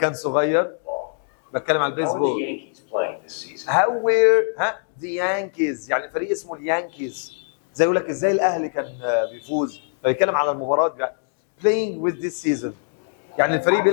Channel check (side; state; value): right; silent; 64 dB below the other